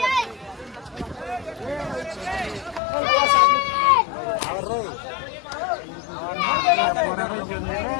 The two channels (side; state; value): right; drops out; at 2.8 s